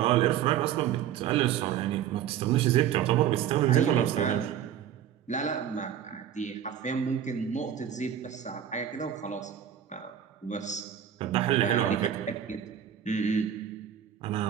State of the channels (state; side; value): quieter; left; 9.8 dB